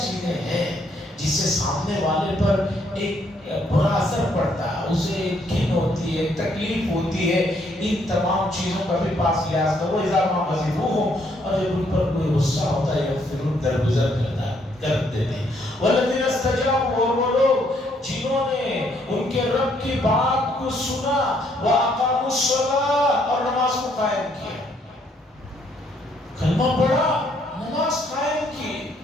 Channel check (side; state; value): both; normal; correlation 0.70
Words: ہیں جس سے سامنے والے پر ایک برا اثر پڑتا ہے، اسے ایک گھن ہوتی ہے، تکلیف ہوتی ہے. ان تمام چیزوں کا بھی پاس لحاظ کرو. اذا ما غضبوهم، اور جب ان پر کوئی غصہ ہوتا ہے یغفرون، درگزر کر دیتے ہیں. والذین استجابوا، اور وہ لوگ جنہوں نے ان کے رب کی بات کو سنا، واقاموا الصلاۃ، اور نماز کو قائم کیا. کلمہ پڑھا، نماز قائم کی.